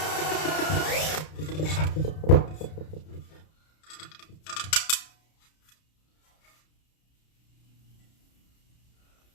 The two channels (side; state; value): right; late; 32 ms